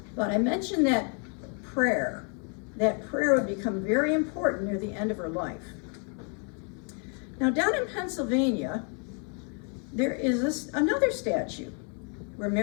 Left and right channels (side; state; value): right; quieter; 39.5 dB